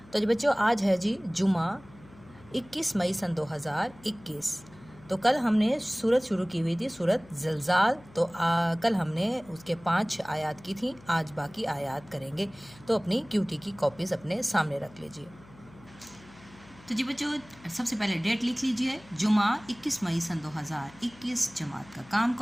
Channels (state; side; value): noise; left; hum, 23 dB below the sound